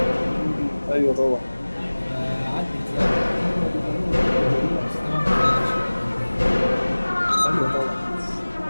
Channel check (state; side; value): inverted; both; correlation -1.00